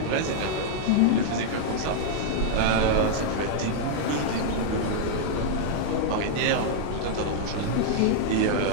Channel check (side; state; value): both; different; correlation -0.01